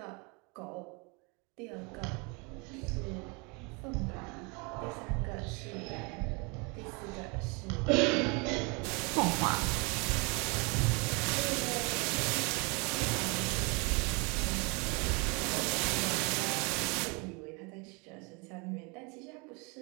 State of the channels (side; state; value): left; quieter; 30.7 dB